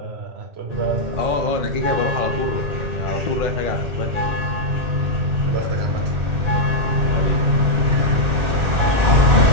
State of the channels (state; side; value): late; left; 1.8 ms